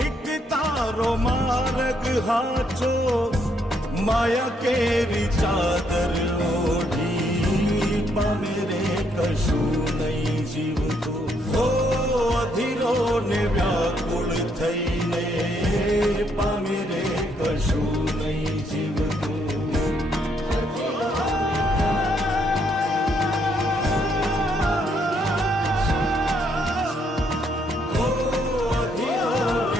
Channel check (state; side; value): normal; both; correlation 0.73